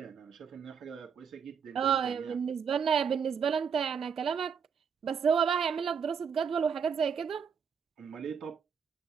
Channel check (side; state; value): left; quieter; 6.7 dB